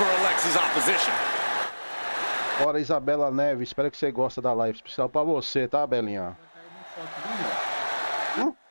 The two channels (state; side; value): inverted; both; correlation -1.00